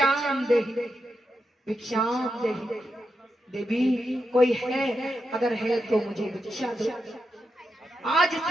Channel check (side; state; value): both; normal; correlation 0.86